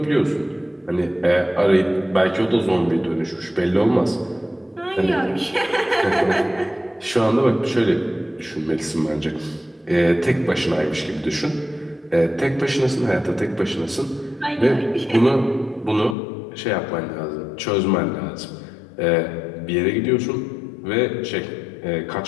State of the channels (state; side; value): drops out; right; at 16.2 s